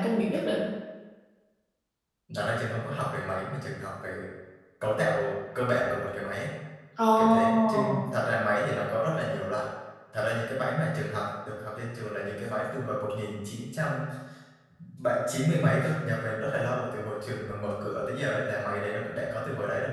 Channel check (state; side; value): identical; both; correlation 1.00